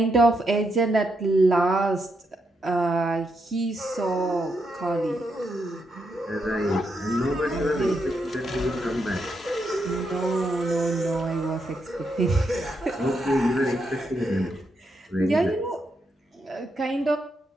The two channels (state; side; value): normal; both; correlation 0.81